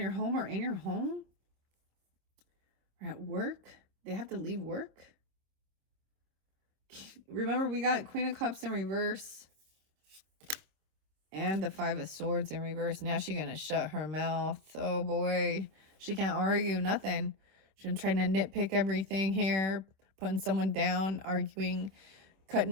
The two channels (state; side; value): late; left; 26 ms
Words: home or in your home? Or at work? They have to leave work? Remember, we got Queen of Cups in reverse and the 5 of Swords in reverse. Now she's gonna shut her mouth. Oh boy, she can't argue nothing. She's been trying to nitpick everything here, putting someone down, arguing,